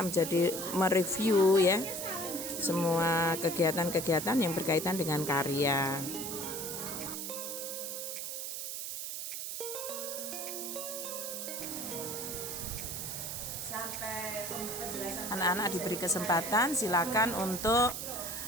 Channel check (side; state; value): right; noise; hiss, 5 dB below the sound